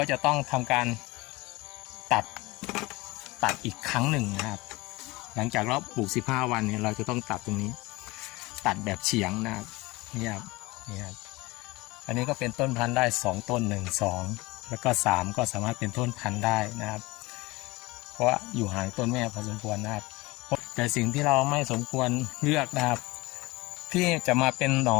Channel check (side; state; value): right; quieter; 22.2 dB